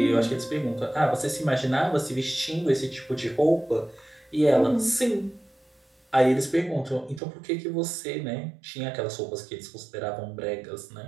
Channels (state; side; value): drops out; left; at 7.2 s